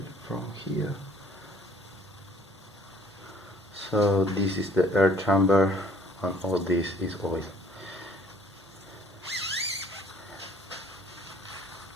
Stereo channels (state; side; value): normal; both; correlation 0.57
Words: from here. So this is the air chamber and all this is oil.